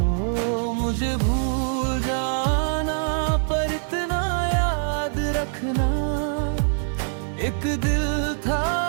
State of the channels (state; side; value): silent; left; digital silence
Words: मुझे भूल जाना पर इतना रखना। एक दिल